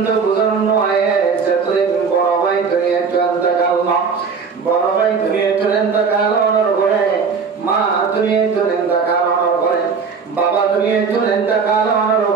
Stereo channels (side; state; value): left; quieter; 5.5 dB